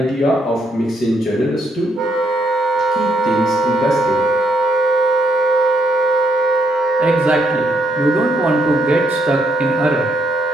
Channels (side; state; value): both; normal; correlation 0.73